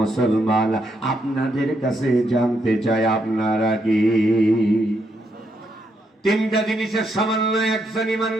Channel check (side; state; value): both; normal; correlation 0.78